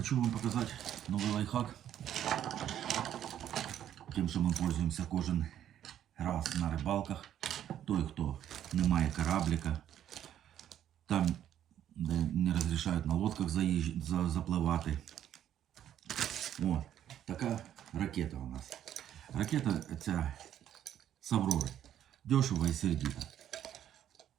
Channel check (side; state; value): left; quieter; 10.7 dB